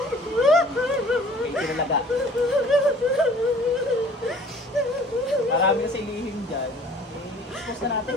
May kinalaga. Marami kasi lihim dyan. I-expose na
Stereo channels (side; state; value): both; normal; correlation 0.50